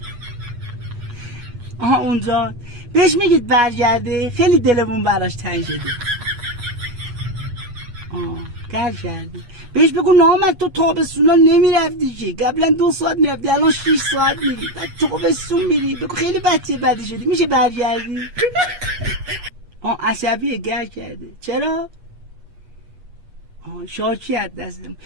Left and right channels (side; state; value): left; late; 8.3 ms